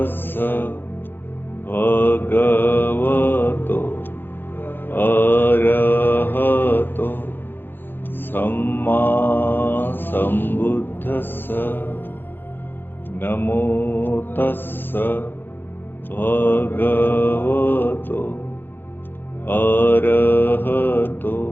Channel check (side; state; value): right; late; 0.099 ms